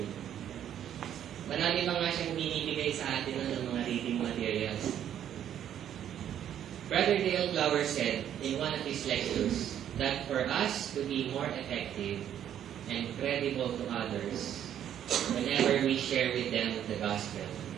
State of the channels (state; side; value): quieter; left; 10.2 dB